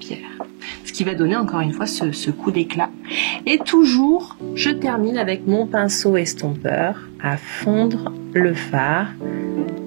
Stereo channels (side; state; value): left; silent; 57 dB below the other